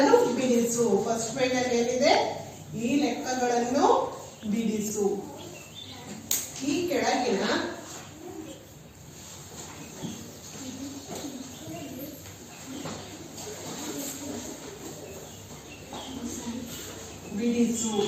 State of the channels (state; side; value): identical; both; correlation 1.00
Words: ಬಿಡಿಸು. ಫಸ್ಟ್ ಪೇಜಲ್ಲಿ ಏನಿದೆ, ಈ ಲೆಕ್ಕಗಳನ್ನು ಬಿಡಿಸು. ಈ ಕೆಳಗಿನ ಬಿಡಿಸು.